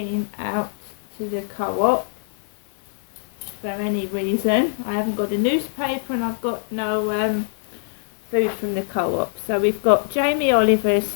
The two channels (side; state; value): right; silent; digital silence